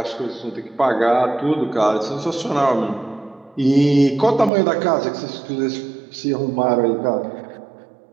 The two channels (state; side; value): drops out; left; at 4.5 s